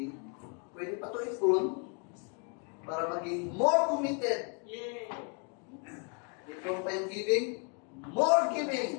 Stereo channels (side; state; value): right; quieter; 37.4 dB